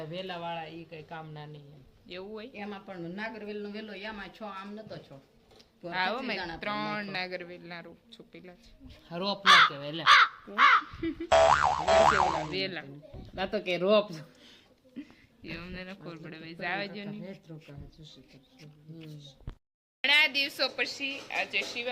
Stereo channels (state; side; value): identical; both; correlation 1.00